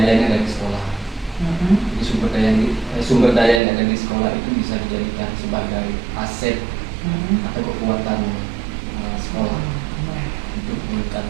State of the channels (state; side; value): drops out; left; at 3.6 s